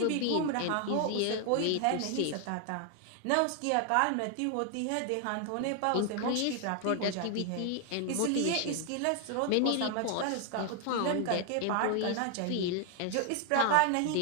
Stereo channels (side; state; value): both; different; correlation 0.00